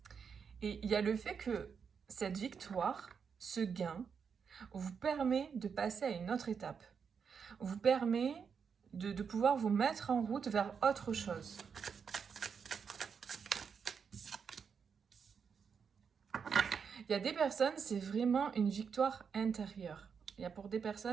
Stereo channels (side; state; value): left; quieter; 6.4 dB